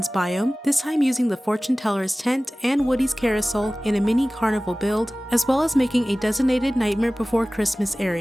biome, this time using the Fortune Teller's tent and Woody's carousel in a mini carnival build, as well as making a designated Nightmare Before Christmas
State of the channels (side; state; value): both; normal; correlation 0.98